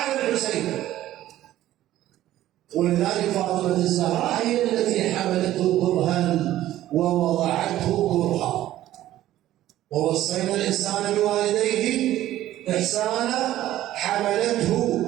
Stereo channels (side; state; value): left; quieter; 13.8 dB